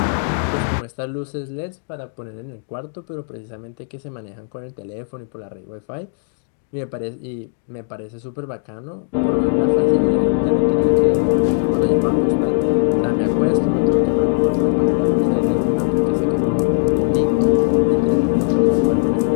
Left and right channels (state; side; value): silent; right; digital silence